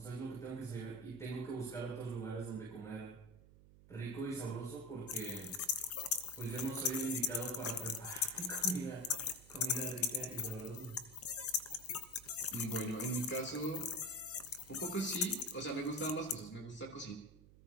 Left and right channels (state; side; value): noise; right; hum, 21 dB below the sound